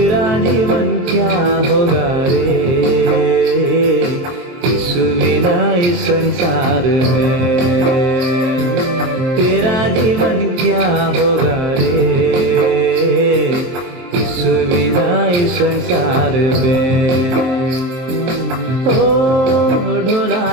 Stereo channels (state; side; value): late; left; 23 ms